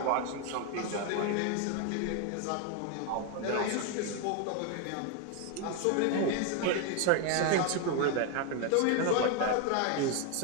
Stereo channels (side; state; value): both; different; correlation 0.01